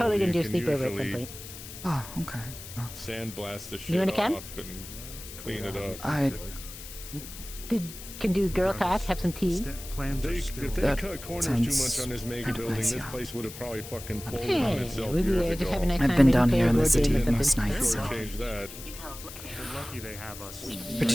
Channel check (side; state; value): left; noise; hiss, 13 dB below the sound